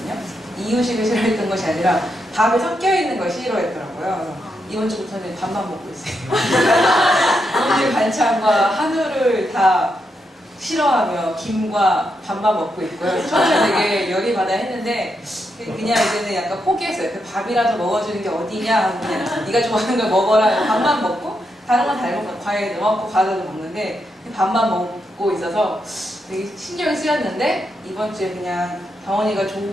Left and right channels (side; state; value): both; normal; correlation 0.83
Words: 이유식을 싫어했던 것이 아니라 밥에 섞여 있는 걸 싫어했더라고요. 이번 주부터는 밥만 먹고 있어요. 오늘 반찬과 한우를 다 싫어하며 김과 밥만 먹고 있고요. 처음에 되게 열이 받아 했는데 그냥 이제는 약간 포기했어요. 그 밥이라도 먹어주는 게 어디냐 하고 그냥 네가 좋아하는 걸 먹어라. 밥만 먹고 다른 건 잘 먹고 과일도 먹고 과자도 먹는데 밥만 먹고 있어서 되게 신경이 쓰였는데 이번 주에 그냥 다원이가